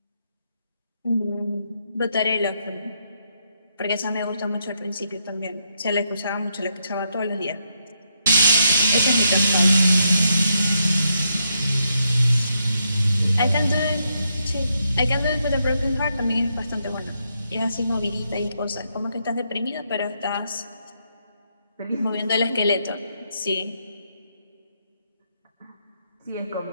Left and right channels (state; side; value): inverted; both; correlation -0.79